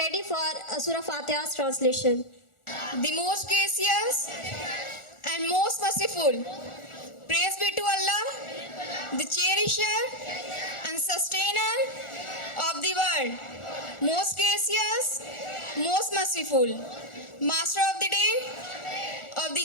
for Surah Fatiha's translation. The most gracious and most merciful. Praise be to Allah, the cherisher and sustainer of the world. Most gracious, most merciful. Master of the day, of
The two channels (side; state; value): right; late; 1.4 ms